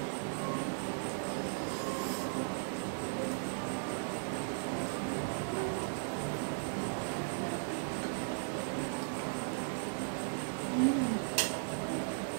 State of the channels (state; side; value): silent; left; digital silence